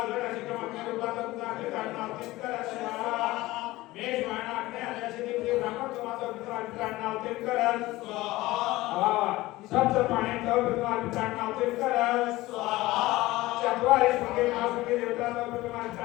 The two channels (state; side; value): quieter; right; 18.6 dB